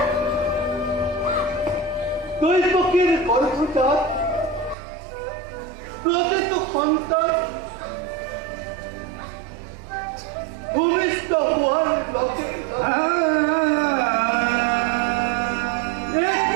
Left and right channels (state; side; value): drops out; left; at 4.8 s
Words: দৈত্যকীৰ গৰ্ভজাত প্ৰতিটো সন্তান ভূমিষ্ঠ হোৱাৰ লগে